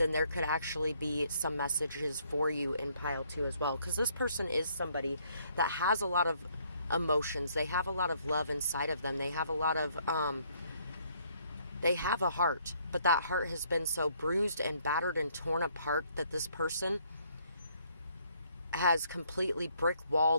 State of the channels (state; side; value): inverted; both; correlation -0.66